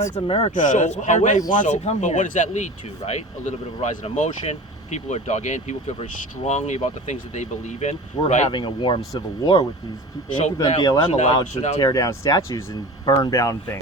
It's America. So, That's what everybody wants to come but here. what does that lead to, right? A little bit of a rise in emotion. People are dug in. People feel very strongly about the things that they believe in. We're right? having a warm civil war with these people. So People and now- BLM so now- allowed so to now- tear down statues and burn down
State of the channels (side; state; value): both; normal; correlation 0.35